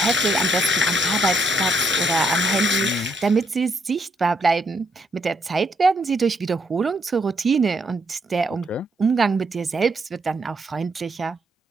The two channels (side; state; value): both; normal; correlation 0.74